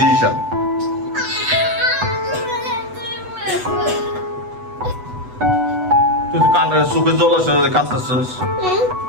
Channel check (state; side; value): late; left; 8.1 ms